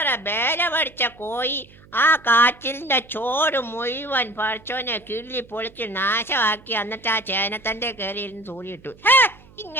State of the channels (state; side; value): noise; right; hum, 25 dB below the sound